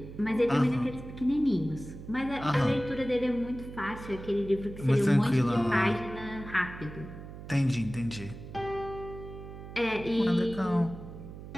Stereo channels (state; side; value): noise; right; hum, 13 dB below the sound